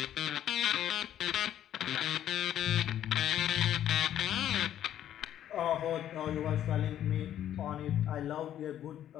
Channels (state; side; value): quieter; right; 11.1 dB